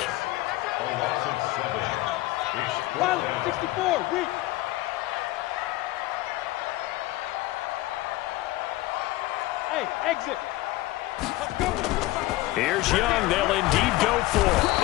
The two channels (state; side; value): quieter; right; 18.2 dB